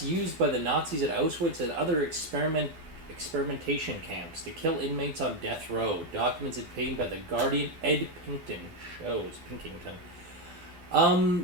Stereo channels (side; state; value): left; late; 12 ms